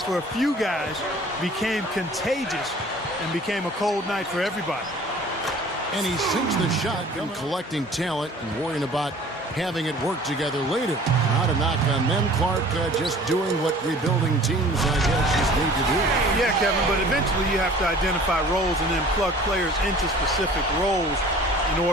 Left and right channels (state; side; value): normal; both; correlation 0.48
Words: for a few guys became contagious and became a cold night for everybody. And he sinks the shot from collecting talent and worrying about having it work together later. Not a knock on them, Clark, just doing what rebuilding teams, I guess, just need to do. Yeah, Kevin, but eventually you have to identify roles and then plug players into specific roles in